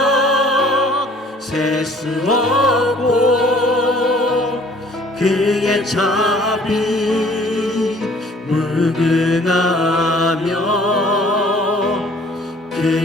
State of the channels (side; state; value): both; normal; correlation 0.54